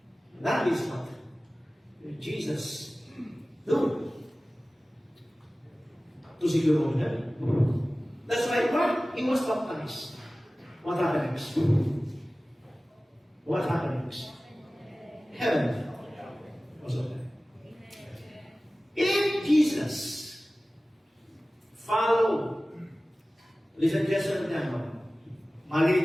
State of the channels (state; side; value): normal; both; correlation 0.97